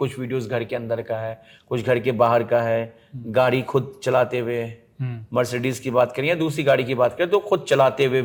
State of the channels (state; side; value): identical; both; correlation 1.00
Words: वीडियोस घर के अंदर का है, कुछ घर के बाहर का है, गाड़ी खुद चलाते हुए, मर्सिडीज की बात करें या दूसरी गाड़ी की बात करें, तो खुद चलाते हुए